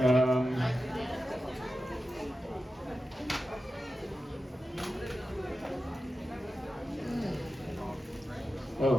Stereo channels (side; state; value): both; normal; correlation 0.92